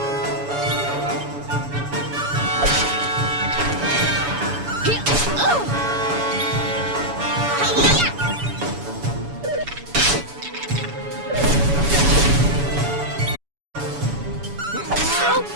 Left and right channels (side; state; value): left; late; 7.0 ms